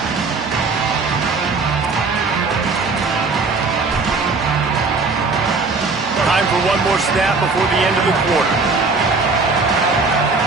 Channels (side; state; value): left; quieter; 4.1 dB